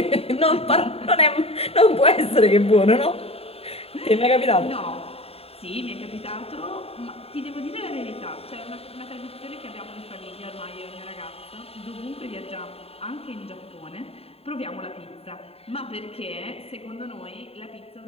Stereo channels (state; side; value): late; right; 0.29 ms